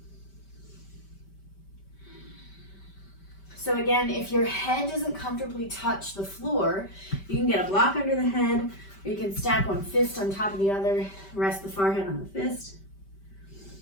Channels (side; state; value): right; late; 5.1 ms